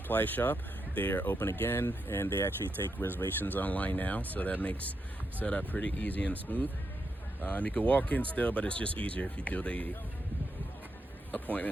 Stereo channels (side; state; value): both; normal; correlation 0.83